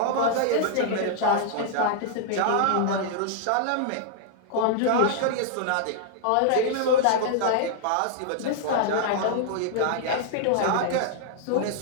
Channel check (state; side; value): different; both; correlation -0.01